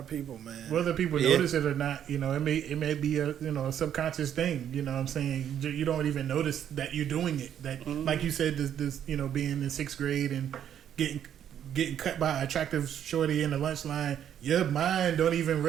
people, man. Whether people Yeah. notice it or not, it may be a subconscious thing. You know what I'm saying? You don't even notice that you're doing it. That like you said, this being in 6th grade and getting cut by an attractive shorty in the lunch line, your mind don't even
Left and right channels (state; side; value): quieter; left; 9.7 dB